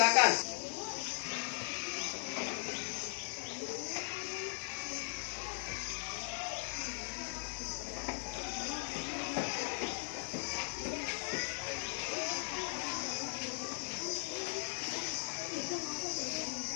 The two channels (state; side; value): silent; right; digital silence